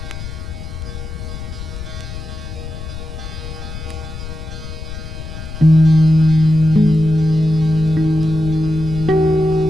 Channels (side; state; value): left; noise; rumble, 9 dB below the sound